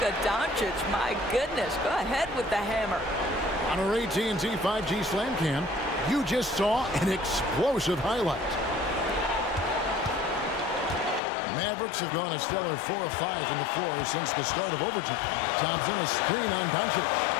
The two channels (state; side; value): drops out; right; at 11.2 s